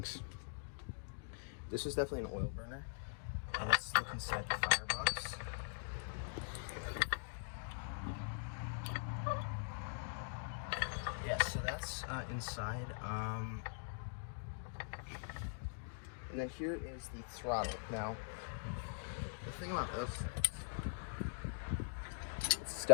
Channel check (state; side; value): silent; right; digital silence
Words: This is definitely an oil burner. And let's look inside the firebox. Yeah, so that's inside. And then here is the throttle. Now, the thing about this things, it's